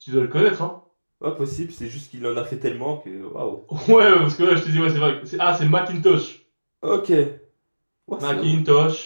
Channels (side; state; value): both; inverted; correlation -1.00